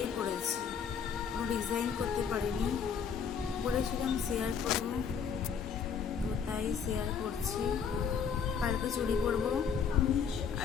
করেছি, কোনো ডিজাইন করতে পারিনি। বলেছিলাম শেয়ার করবো, তো তাই শেয়ার করছি। কালকে চুড়ি পরবো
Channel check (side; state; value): right; quieter; 6.7 dB